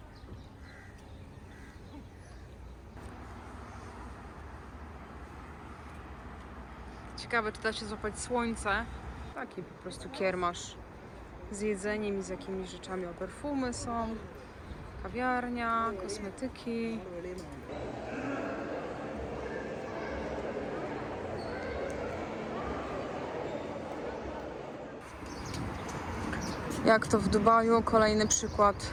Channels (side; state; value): both; identical; correlation 1.00